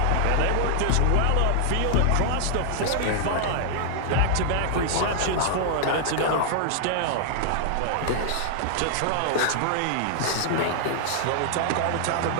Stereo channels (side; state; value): both; different; correlation -0.01